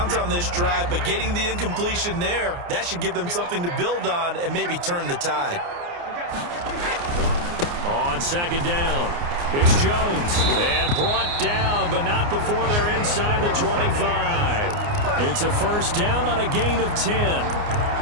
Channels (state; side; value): late; left; 29 ms